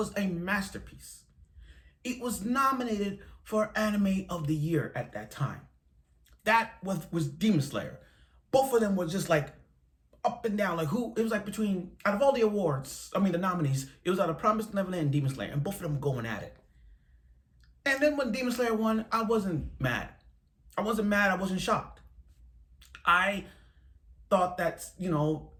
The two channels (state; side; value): identical; both; correlation 1.00